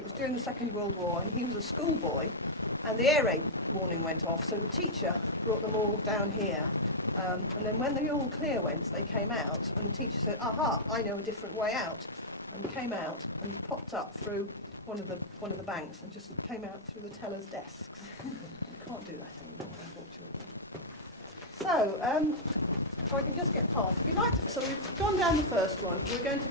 during the Second World War, and he was a schoolboy, and the air raid warning went off, so the teacher brought them all down here. And then when the all clear went, they came out, and the teacher said, "Aha, I know a different way out," and came out and popped up through one of the banks and just came out through the tellers' desks. You can't do that anymore, unfortunately. So, if I can just get past, if you'd like to. So we've gone down the first one. We're going to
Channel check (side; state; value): both; normal; correlation -0.07